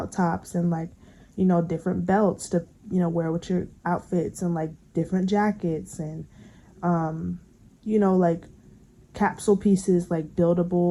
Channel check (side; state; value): both; identical; correlation 1.00